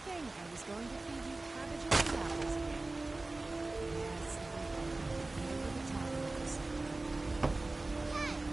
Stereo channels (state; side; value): quieter; left; 3.1 dB